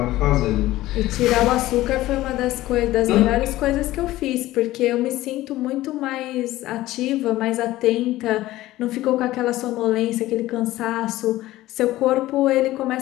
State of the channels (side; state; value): right; quieter; 16.4 dB